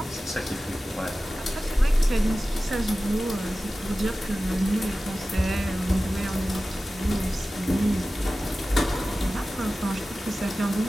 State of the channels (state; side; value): normal; both; correlation 0.95